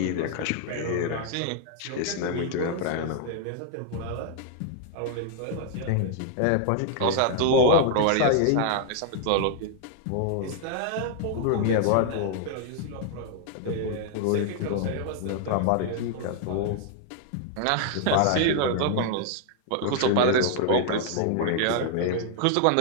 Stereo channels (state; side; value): different; both; correlation 0.00